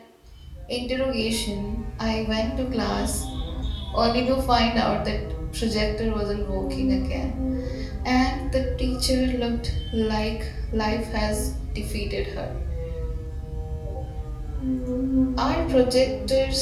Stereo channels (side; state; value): both; identical; correlation 1.00